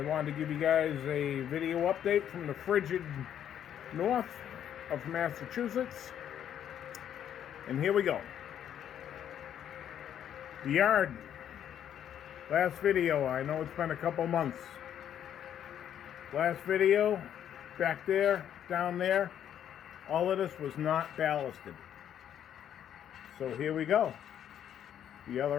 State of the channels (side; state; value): right; quieter; 9.8 dB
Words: to give you guys a video update from the frigid north of Massachusetts. And here we go. The yard. Last video, I know it's been a couple months. Last video, back there, down there, all of this was not ballasted. So here we go. The